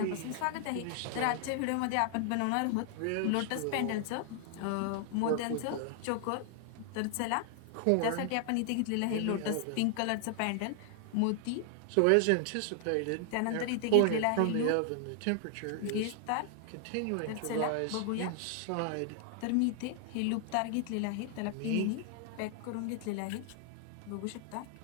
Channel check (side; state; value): both; different; correlation 0.00